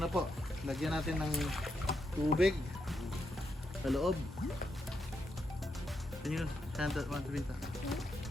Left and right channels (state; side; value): normal; both; correlation 0.82